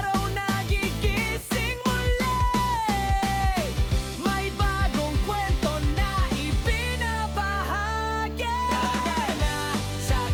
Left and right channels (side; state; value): both; identical; correlation 1.00